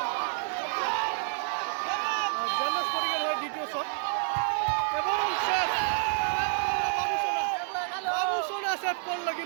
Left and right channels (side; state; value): left; silent; 59 dB below the other